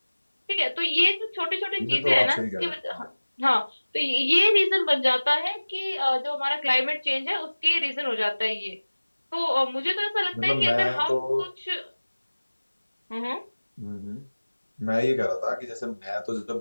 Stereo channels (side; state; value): both; inverted; correlation -1.00